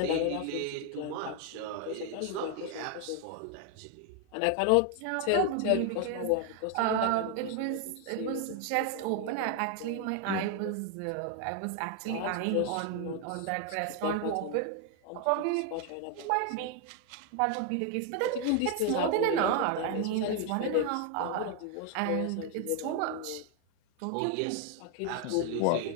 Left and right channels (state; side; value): different; both; correlation 0.01